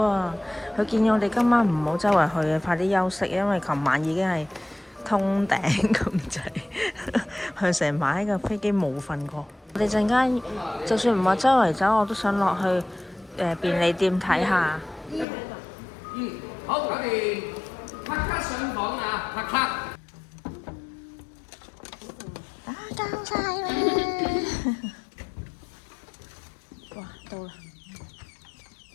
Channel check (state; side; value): drops out; right; at 15.2 s